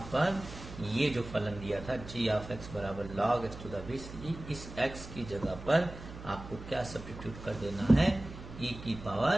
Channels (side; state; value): right; noise; hum, 13 dB below the sound